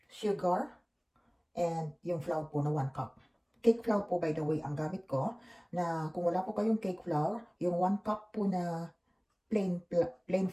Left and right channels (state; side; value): identical; both; correlation 1.00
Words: sugar, and yung flour po na 1 cup. Cake flour po, by the way, ang gamit ko. Na kung wala po kayong cake flour, yung 1 cup po na plain